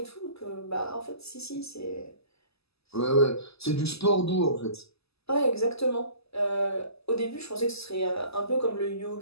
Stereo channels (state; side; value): late; right; 0.78 ms